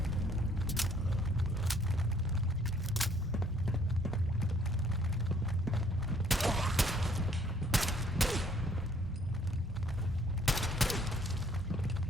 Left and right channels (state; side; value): normal; both; correlation 0.63